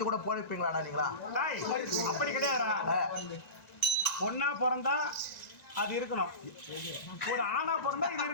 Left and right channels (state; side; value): late; right; 1.9 ms